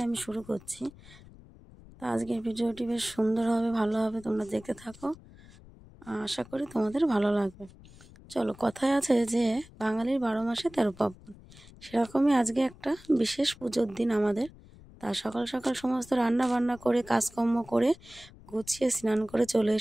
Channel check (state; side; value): noise; left; rumble, 22 dB below the sound